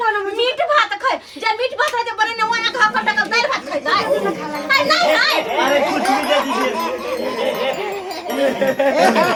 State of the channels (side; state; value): both; identical; correlation 1.00